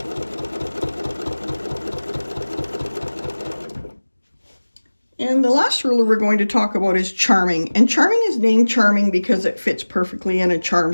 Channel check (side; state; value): both; inverted; correlation -1.00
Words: And the last ruler we're going to talk about is Charming. And Charming is named Charming because it fits perfectly in a charm